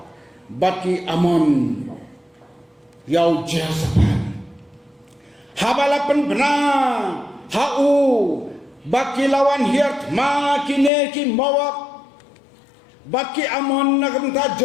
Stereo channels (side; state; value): right; drops out; at 10.9 s